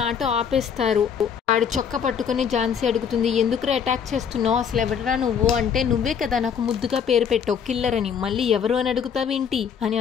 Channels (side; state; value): right; quieter; 7.4 dB